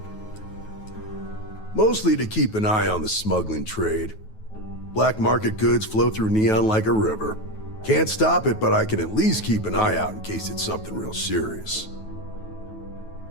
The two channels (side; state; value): right; late; 9.3 ms